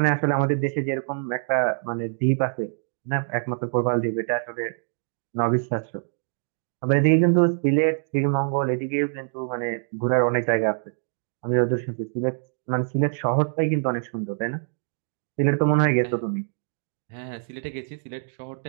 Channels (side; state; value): left; silent; 62 dB below the other